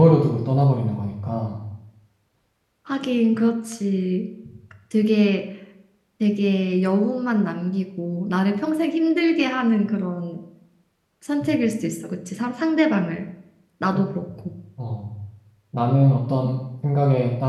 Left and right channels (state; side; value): identical; both; correlation 1.00